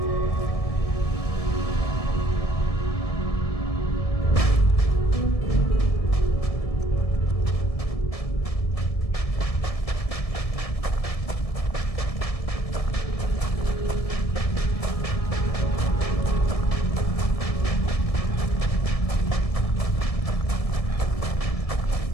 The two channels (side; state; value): right; late; 1.7 ms